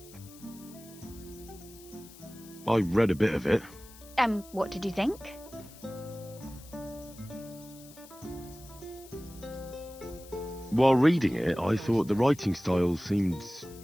I read a bit of it. What did you think? While reading it, I thought the writing style seemed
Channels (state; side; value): noise; left; hiss, 20 dB below the sound